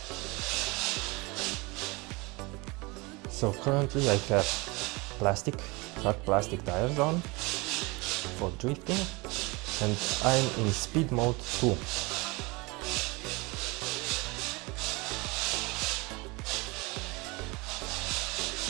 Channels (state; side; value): quieter; left; 25.5 dB